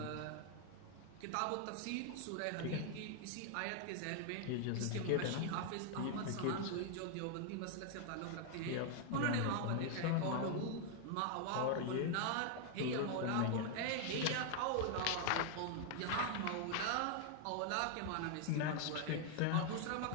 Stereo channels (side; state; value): both; different; correlation 0.00